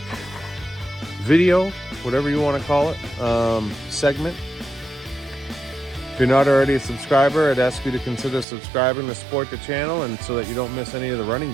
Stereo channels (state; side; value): drops out; left; at 8.5 s